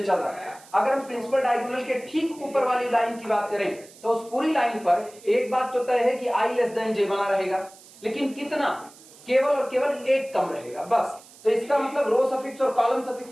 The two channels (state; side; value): noise; right; hiss, 22 dB below the sound